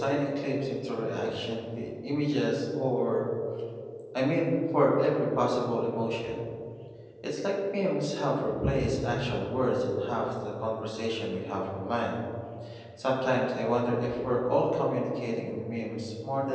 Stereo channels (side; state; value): both; identical; correlation 1.00